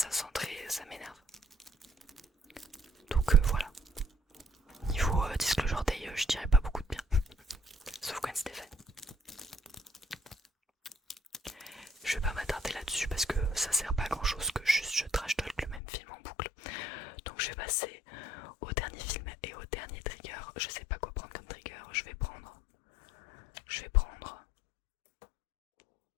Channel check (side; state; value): right; drops out; at 15.8 s